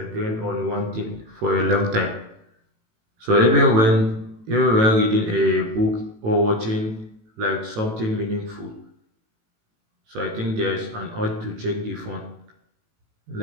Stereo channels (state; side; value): late; left; 18 ms